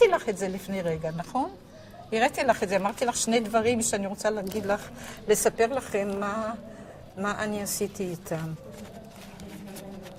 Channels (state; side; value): identical; both; correlation 1.00